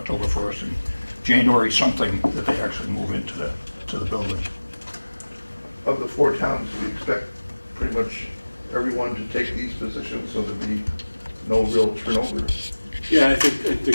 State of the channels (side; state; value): both; inverted; correlation -1.00